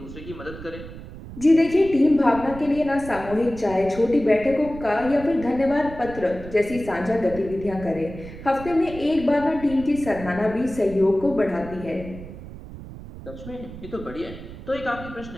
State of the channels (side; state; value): right; noise; rumble, 13 dB below the sound